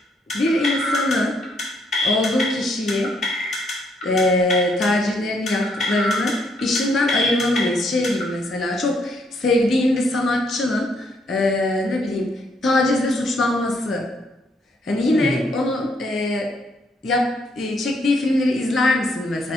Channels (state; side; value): normal; both; correlation 0.72